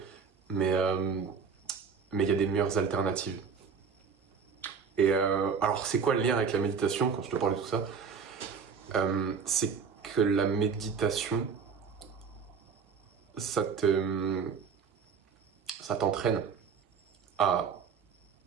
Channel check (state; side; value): quieter; left; 6.1 dB